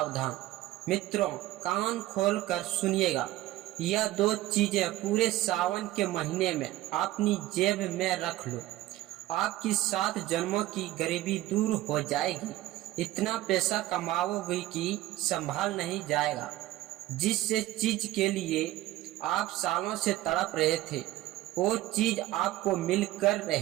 मित्रों, कान खोल कर सुनिएगा। यह दो चीजें पूरे सावन के महीने में अपनी जेब में रख लो। आपकी 7 जन्मों की गरीबी दूर हो जाएगी। इतना पैसा कमाओगे कि संभाल नहीं जाएगा। जिस चीज के लिए आप सालों से तड़प रहे थे, वो चीज आपको मिलकर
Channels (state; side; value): quieter; left; 15.9 dB